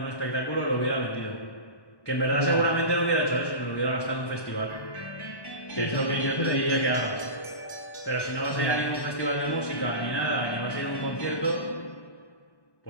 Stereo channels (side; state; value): right; late; 1.1 ms